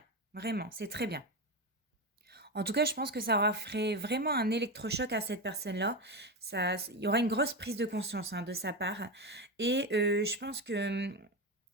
Vraiment, c'est très bien. En tout cas, je pense que ça aura fait vraiment un électrochoc à cette personne-là. Il y aura une grosse prise de conscience hein, de sa part. Et je pense que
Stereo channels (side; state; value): both; normal; correlation 0.16